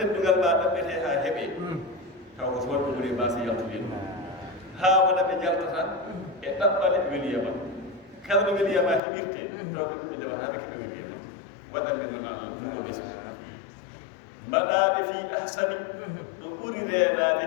ma ɗaɓɓete ha heeɓe taw ko wonɓe ɓuri mbasa yaltude haa wona ɓe jaltata e ɗaɓɓale weliyama kala ɗo weliyama heɓirte taw ko ɗum ɓe ndewata ɓe keɓe weliyama waɗande noon Allah ɗuɗo ɓesgu mbaɗaɓe fi ahsani ɗo ɓuri reenade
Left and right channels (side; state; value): right; drops out; at 9.0 s